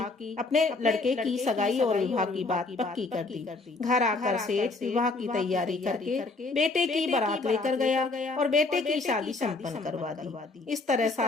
अपने लड़के की सगाई और विवाह की बात पक्की कर दी। घर आकर सेठ विवाह की तैयारी करके बेटे की बारात लेकर गया और बेटे की शादी संपन्न करवा दी। इस तरह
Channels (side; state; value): right; quieter; 3.5 dB